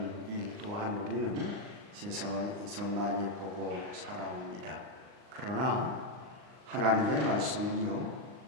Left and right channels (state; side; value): late; left; 39 ms